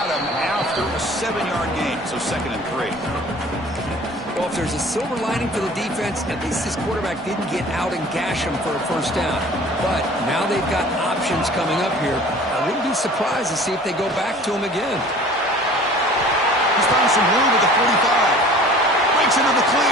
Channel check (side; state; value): both; normal; correlation 0.46